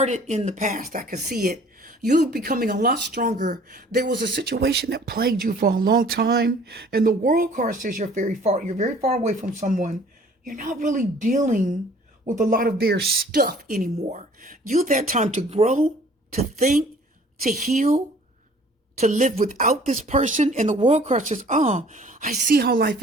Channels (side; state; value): both; normal; correlation 0.53